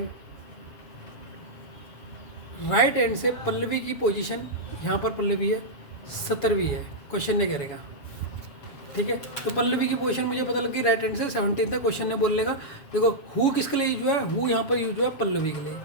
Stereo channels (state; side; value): late; right; 7.1 ms